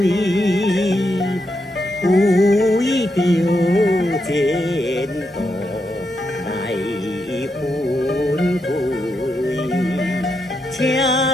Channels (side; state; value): both; normal; correlation 0.83